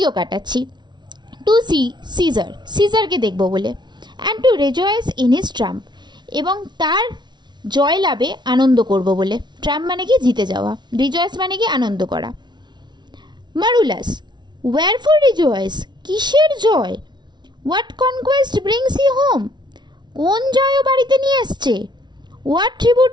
কাটাচ্ছি। টু সি সিজার, সিজারকে দেখবো বলে। And to rejoice in his triumph, এবং তার জয় লাভে আনন্দ করব বলে। ট্রাম্প মানে কি জিতে যাওয়া, রিজয়েস মানে কি আনন্দ করা। মারুলাস, ওয়্যারফর রিজয়েস, কিসের জয়? What conquest brings he home, কোন জয়ও বাড়িতে নিয়ে এসছে? What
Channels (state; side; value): late; left; 0.21 ms